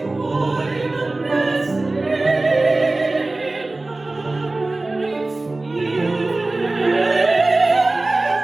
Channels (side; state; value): left; quieter; 3.0 dB